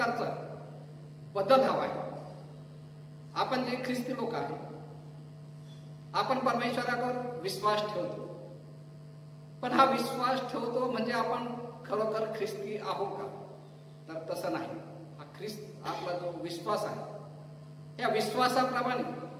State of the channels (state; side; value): identical; both; correlation 1.00